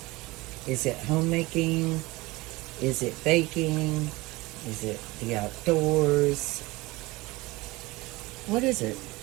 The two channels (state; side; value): quieter; left; 21.6 dB